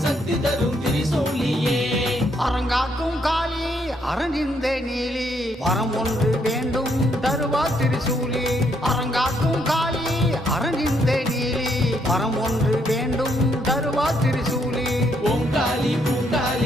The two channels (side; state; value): both; normal; correlation 0.72